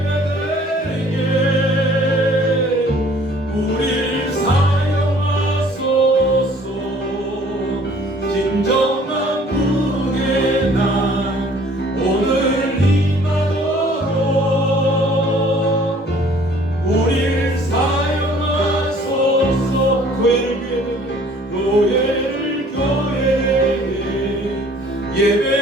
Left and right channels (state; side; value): normal; both; correlation 0.55